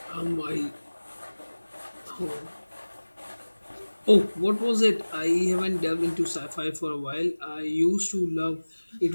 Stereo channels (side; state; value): both; inverted; correlation -1.00